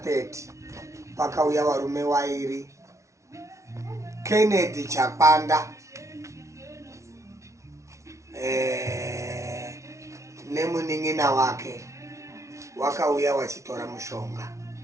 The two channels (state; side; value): late; left; 0.14 ms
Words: pakauya varume vairi, Kennedy Chapanda nemunin'ina wake, wakauya wachitora mushonga.